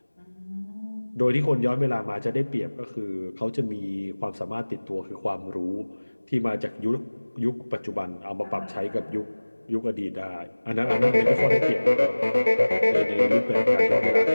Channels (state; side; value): inverted; both; correlation -1.00